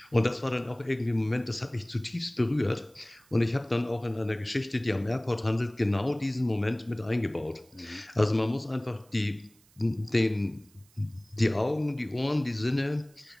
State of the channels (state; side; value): noise; right; hiss, 30 dB below the sound